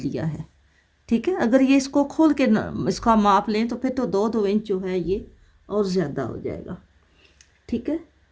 है, ठीक है। अगर ये इसको खोल के इसका माप लें तो फिर तो 2-2 इंच जो है ये और ज़्यादा हो जाएगा, ठीक है।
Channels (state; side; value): identical; both; correlation 1.00